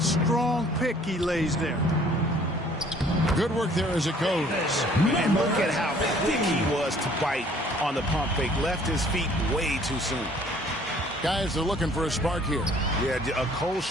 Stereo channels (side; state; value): both; normal; correlation 0.57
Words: strong pick he lays there. Good work there as it goes. And look at how quick he was to bite on the pump fake. Left his feet way too soon. Guys, they're looking for a spark here. Yeah, a cold